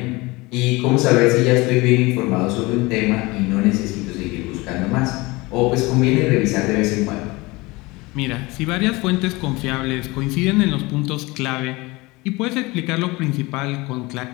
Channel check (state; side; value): quieter; right; 23.1 dB